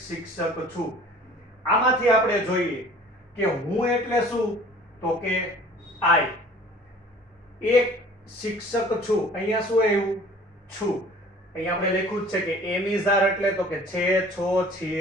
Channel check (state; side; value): normal; both; correlation 0.49